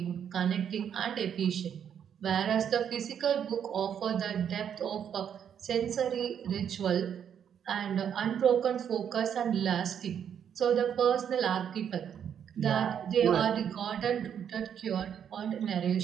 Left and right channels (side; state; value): left; quieter; 8.5 dB